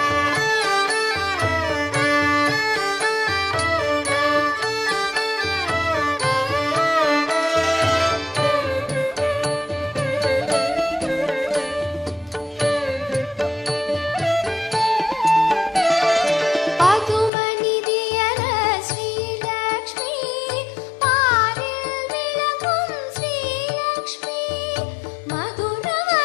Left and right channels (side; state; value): right; drops out; at 17.3 s